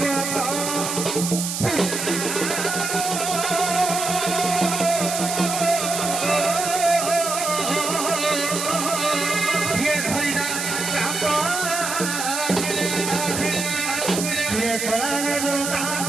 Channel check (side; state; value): right; noise; hiss, 3 dB below the sound